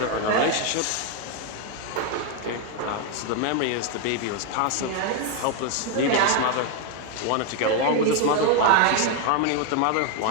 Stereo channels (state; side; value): different; both; correlation 0.01